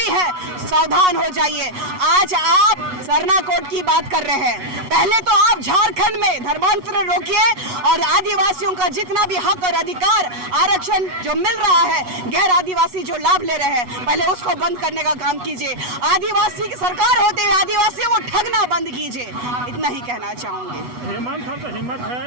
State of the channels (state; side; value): late; left; 8.1 ms